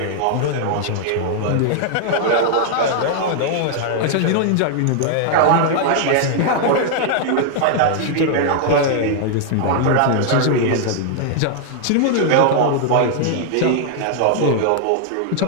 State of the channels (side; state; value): both; different; correlation 0.00